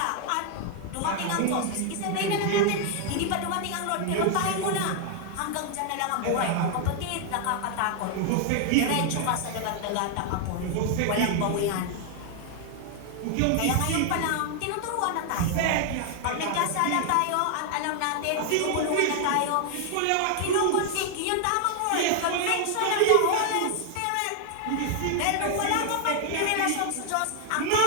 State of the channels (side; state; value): both; different; correlation 0.00